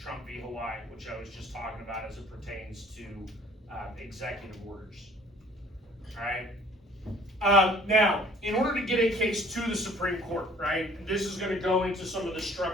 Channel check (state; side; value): normal; both; correlation 0.54